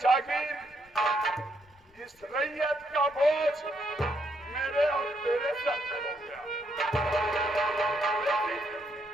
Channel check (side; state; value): left; noise; rumble, 30 dB below the sound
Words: जागीर, इस रैयत का बोझ मेरे और तेरे सर पे हो गया।